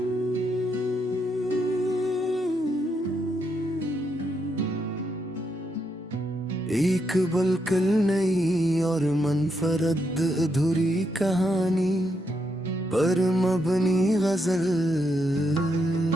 एक बिल्कुल नई और मनफरद अधूरी कहानी पर मबनी गजल,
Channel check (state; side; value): normal; both; correlation 0.79